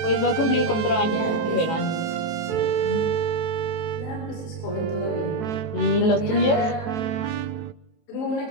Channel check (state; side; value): late; right; 18 ms